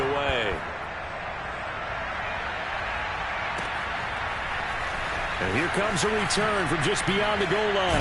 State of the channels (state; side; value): identical; both; correlation 1.00